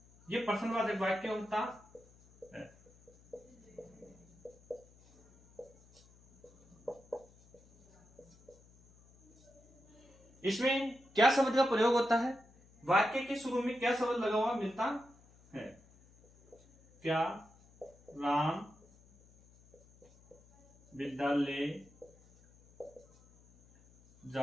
ये प्रश्नवाचक वाक्य होता है। इसमें क्या शब्द का प्रयोग होता है? वाक्य के शुरू में क्या शब्द लगा हुआ मिलता है? क्या राम विद्यालय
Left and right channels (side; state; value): left; noise; hum, 27 dB below the sound